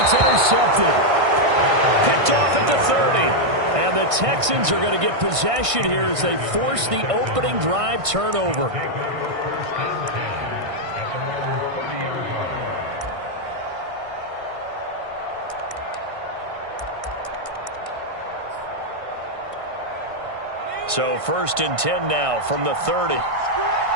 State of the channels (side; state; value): left; late; 1.6 ms